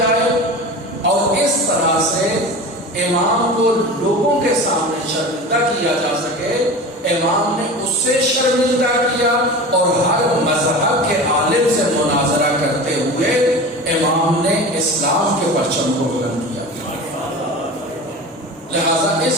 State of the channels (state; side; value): normal; both; correlation 0.32